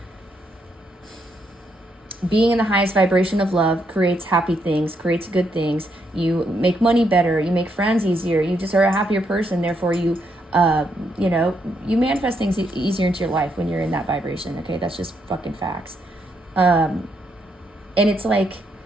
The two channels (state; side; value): normal; both; correlation 0.77